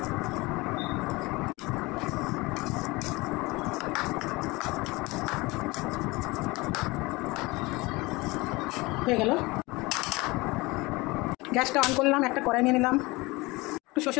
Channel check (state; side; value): quieter; right; 23.1 dB